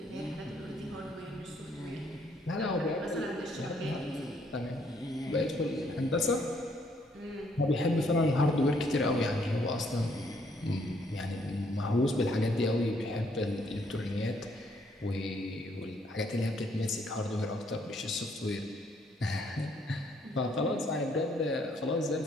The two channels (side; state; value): both; normal; correlation 0.68